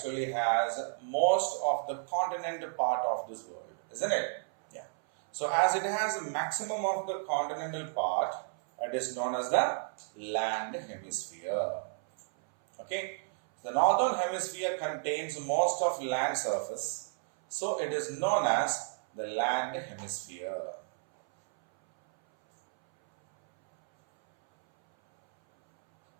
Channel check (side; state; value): left; silent; 56 dB below the other